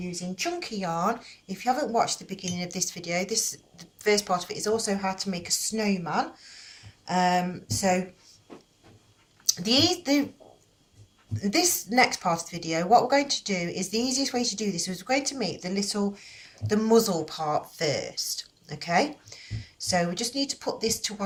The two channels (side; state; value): both; identical; correlation 1.00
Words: chunky yarn. If you haven't watched the beginning of this video, the first part of it is also how to make a snowman. So this next part of the video, what we're going to do is the easiest way to do this is we're going to make the muzzle part first. Okay, so we just need to put this to